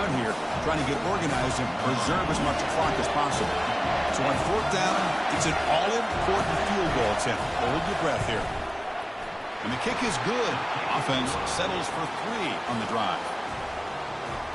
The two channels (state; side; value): identical; both; correlation 1.00